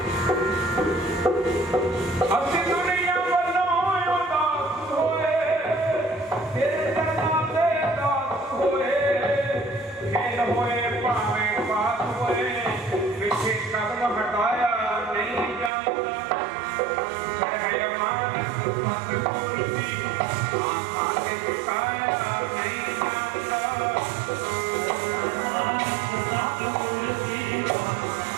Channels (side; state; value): left; drops out; at 15.7 s